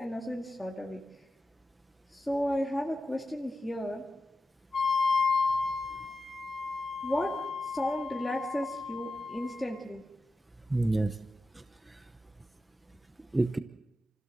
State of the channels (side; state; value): both; normal; correlation 0.92